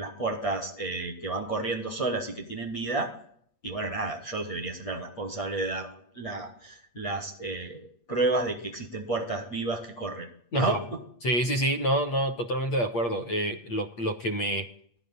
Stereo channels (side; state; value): right; late; 8.5 ms